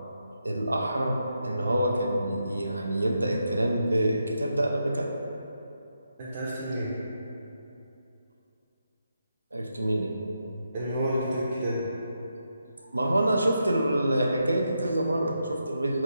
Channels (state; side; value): inverted; both; correlation -0.84